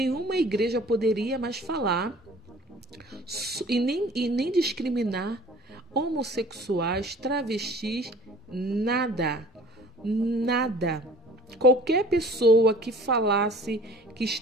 igreja poderia mais falar e nem discriminar homossexuais, travestis, nada. Nada. Qualquer pessoa que falasse que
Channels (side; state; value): both; normal; correlation 0.48